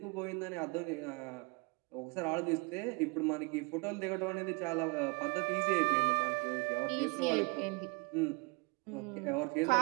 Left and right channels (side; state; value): left; quieter; 29.3 dB